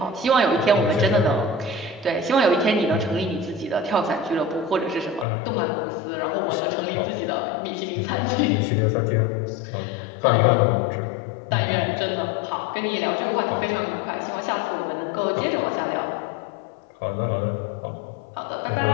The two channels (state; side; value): drops out; right; at 5.2 s